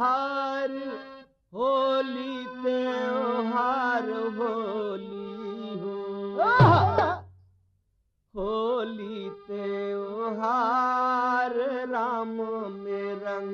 होली त्योहार होली हो होली त्योहार राम में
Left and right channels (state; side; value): identical; both; correlation 1.00